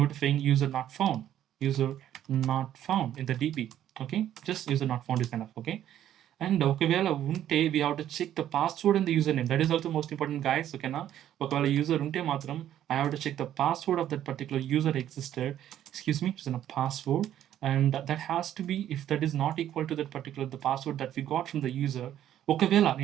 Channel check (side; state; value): left; quieter; 11.4 dB